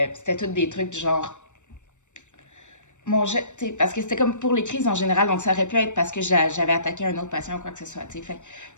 tout des trucs du genre mon geste, parce que c'était comme pour les crises en général, donc ça aurait pu être parce que j'avais attaqué un autre patient ou quoi que ce soit, fait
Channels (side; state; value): right; late; 0.84 ms